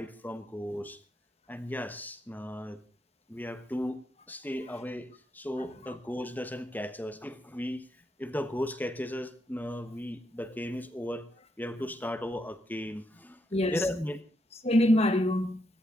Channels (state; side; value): normal; both; correlation 0.80